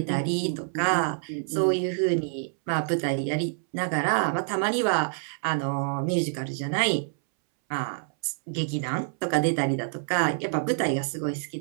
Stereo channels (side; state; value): left; silent; 60 dB below the other